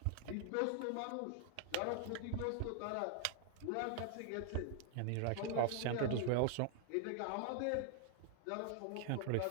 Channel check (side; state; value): both; different; correlation 0.00